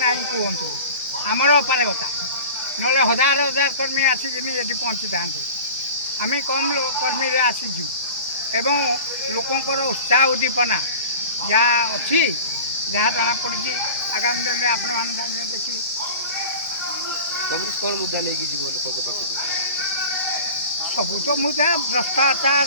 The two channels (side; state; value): both; inverted; correlation -0.38